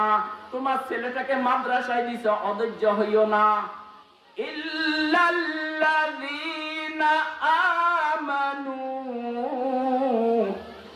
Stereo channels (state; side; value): identical; both; correlation 1.00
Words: তোমার ছেলেটাকে মাদ্রাসায় দিছ, অধৈর্য হইও না। ইল্লাল্লাযীনা আমানু,